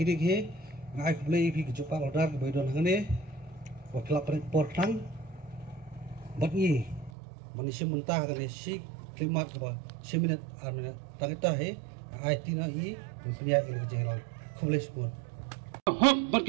dik he ngai play pi ke jupal order ke boy don hangane wa kelap por tang bat ni manusia mentah ke si klimat ke si minit armina tangita he ai tina hi pria ke jengrong khulis pun hok bat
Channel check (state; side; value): drops out; left; at 7.1 s